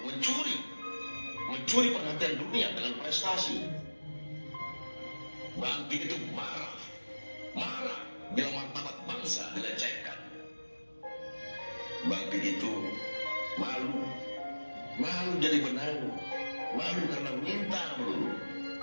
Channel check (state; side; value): inverted; both; correlation -1.00